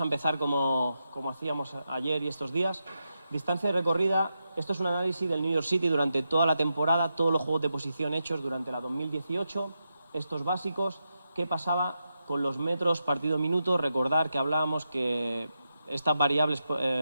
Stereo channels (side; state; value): both; inverted; correlation -0.87